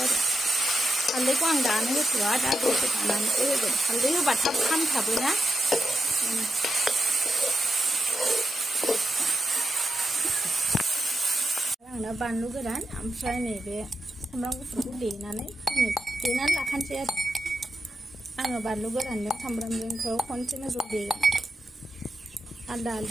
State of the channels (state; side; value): normal; both; correlation 0.88